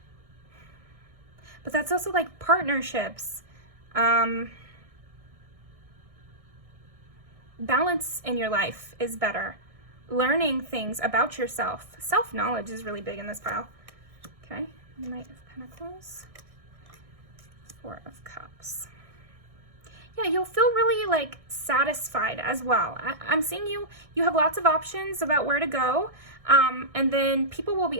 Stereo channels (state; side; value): late; left; 1.6 ms